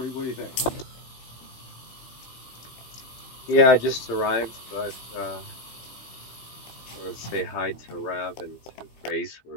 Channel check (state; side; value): late; right; 15 ms